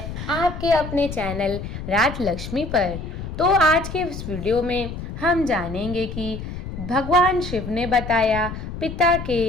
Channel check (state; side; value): noise; left; rumble, 8 dB below the sound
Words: आपके अपने चैनल राजलक्ष्मी पर। तो आज के इस वीडियो में हम जानेंगे कि भगवान शिव ने बताया पिता